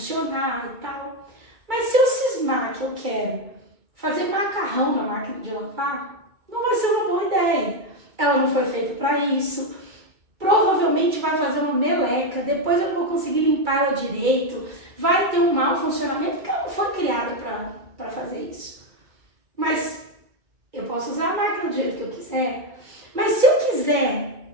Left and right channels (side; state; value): left; late; 2.0 ms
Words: e tal. Mas se eu cismar que eu quero fazer macarrão na máquina de lavar, não vai ser uma boa ideia. Ela não foi feita para isso. Provavelmente vai fazer uma meleca, depois eu não vou conseguir limpar ela direito, vai ter um mau funcionamento, porque ela não foi criada para fazer isso. Mas eu posso usar a máquina do jeito que eu quiser. Mas se eu